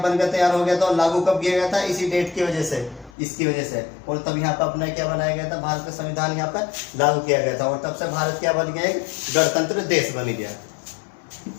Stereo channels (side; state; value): right; drops out; at 3.1 s